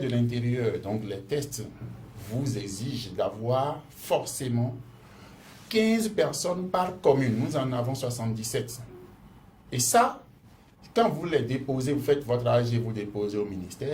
de l'Intérieur, donc les tests, vous exigent d'avoir forcément 15 personnes par commune. Nous en avons 77. Et ça, quand vous les déposez, vous faites votre AG, vous déposez au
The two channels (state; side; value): identical; both; correlation 1.00